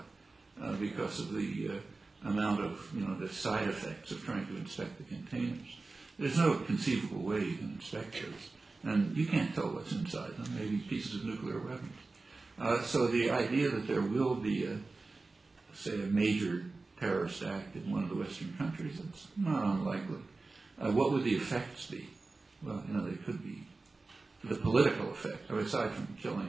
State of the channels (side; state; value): left; quieter; 3.6 dB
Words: because of the amount of, the side effects of trying to inspect the containers. There's no conceivable way you can inspect those. And you can't tell what's inside them, maybe pieces of nuclear weapons. So the idea that there will be, say, a major terrorist act in one of the Western countries, it's not unlikely. What would the effects be? Well, they could be the political effect, aside from killing